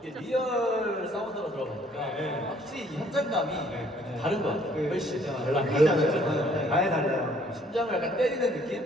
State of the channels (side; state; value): both; normal; correlation 0.62